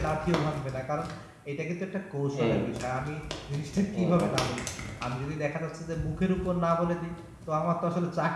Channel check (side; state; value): both; identical; correlation 1.00